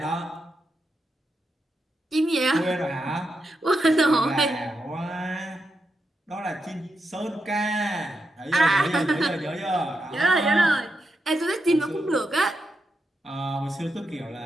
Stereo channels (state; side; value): normal; both; correlation 0.86